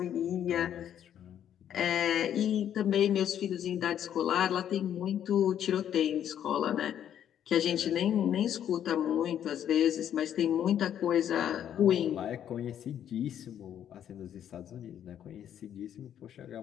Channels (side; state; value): right; quieter; 10.0 dB